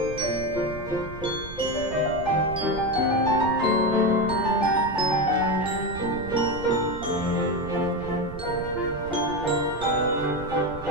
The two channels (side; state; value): right; noise; rumble, 13 dB below the sound